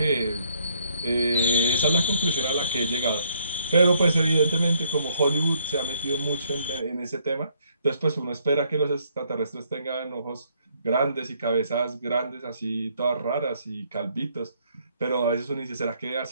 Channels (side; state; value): both; inverted; correlation -0.69